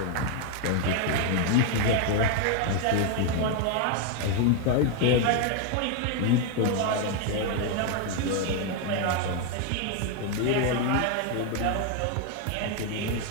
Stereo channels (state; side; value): different; both; correlation 0.01